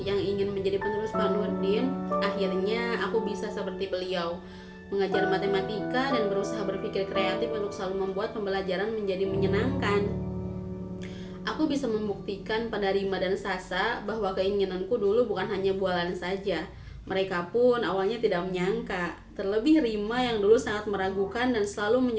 yang ingin menjadi penerus Pak Nurdin, akhirnya aku bisa seperti beliau, mengajar matematika dan berusaha berpikir kreatif untuk selalu membuat pembelajaran menjadi menyenangkan. Aku bisa membuktikan pada Rima dan Sasa bahwa keinginanku dulu bukan hanya bualan saja. Mereka pun awalnya tidak menyangka, terlebih Rima yang dulu sangat meragukan dan selalu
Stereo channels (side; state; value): both; identical; correlation 1.00